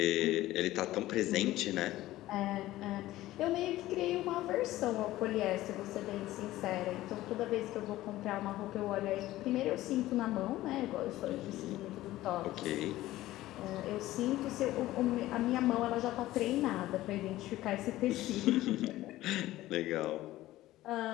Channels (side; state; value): right; quieter; 16.0 dB